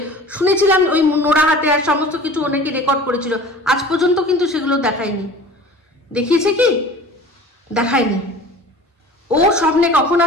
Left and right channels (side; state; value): both; normal; correlation 0.42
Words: শুনেছিলাম ওই নোড়া হাতে আর সমস্ত কিছু অনেকে রেকর্ড করেছিল, আজ পর্যন্ত কিন্তু সেগুলো দেখায়নি। দেখিয়েছে কি? দেখায়নি। ও স্বপ্নে কখন